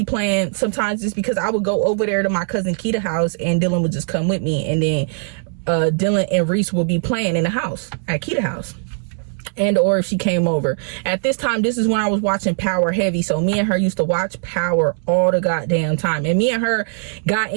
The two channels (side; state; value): left; silent; 66 dB below the other